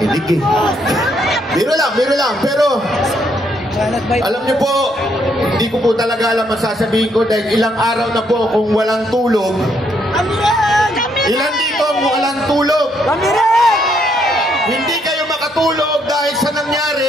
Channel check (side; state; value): both; normal; correlation 0.73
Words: eh. Biro lang. Pero, alam niyo po, hindi ko po talaga alam ang sasabihin ko dahil ilang araw na po kung walang tulog. Ilan dito ang walang tulog? Hindi kayo makatulog dahil sa